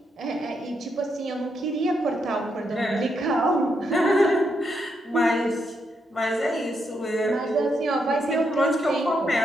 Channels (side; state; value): both; normal; correlation 0.80